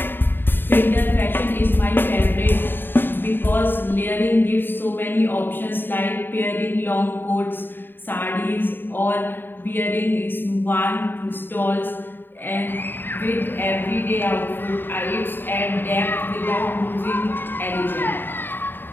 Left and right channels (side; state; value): right; late; 0.096 ms